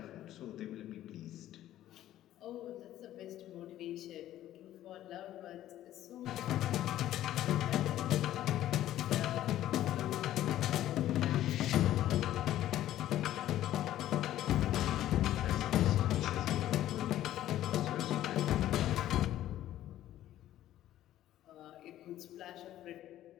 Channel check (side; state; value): right; quieter; 13.1 dB